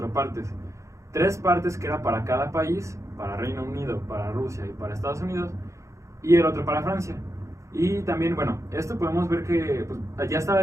partes. 3 partes que era para cada país, para Reino Unido, para Rusia y para Estados Unidos, y el otro para Francia. Y también, bueno, esto podemos ver que pues, ya estaba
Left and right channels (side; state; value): left; late; 0.15 ms